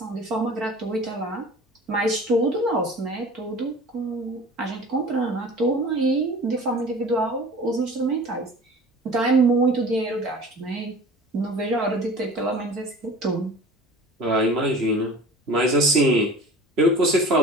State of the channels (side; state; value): both; normal; correlation 0.41